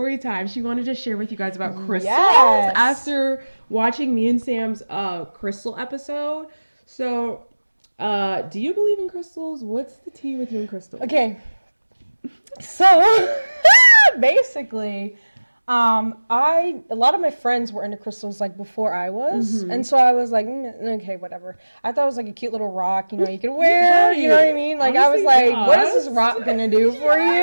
time she wanted to share with you guys about crystals after watching me and Sam's crystal episode. So do you believe in crystals? What's the tea with you and crystals? Okay. So basically, a lot of my friends were into crystals like before I was, and so I was like, okay, whatever. I thought it was like a cute little rock, you could wear. You know what I mean? Like honestly, I was like, what is this rock gonna do for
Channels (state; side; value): inverted; both; correlation -1.00